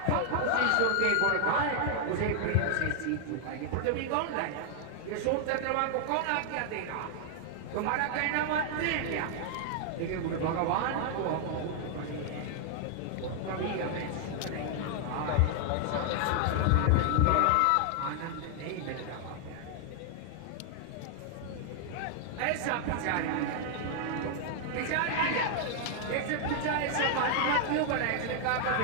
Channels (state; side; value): different; both; correlation 0.00